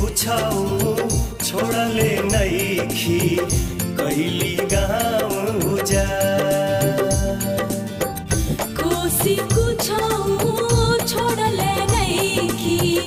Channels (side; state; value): both; identical; correlation 1.00